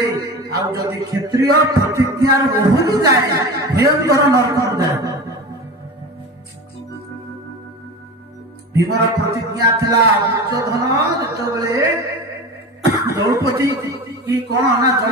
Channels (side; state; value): both; normal; correlation 0.30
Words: ଆଉ ଯଦି କ୍ଷତ୍ରିୟ ପ୍ରତିଜ୍ଞାର ଓହରି ଯାଏ ଭୟଙ୍କର ନରକକୁ ଯାଏ। ଭୀମର ପ୍ରତିଜ୍ଞା ଥିଲା ଦୁର୍ଯ୍ୟୋଧନ ଯେତେବେଳେ ଦ୍ରୌପଦୀ କି କଣ ନା